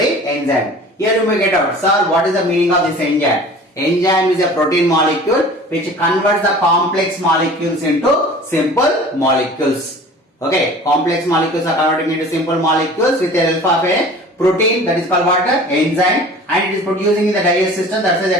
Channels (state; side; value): normal; both; correlation 0.43